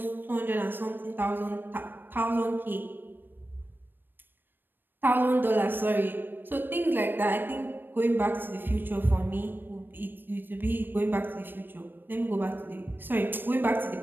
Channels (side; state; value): left; late; 0.095 ms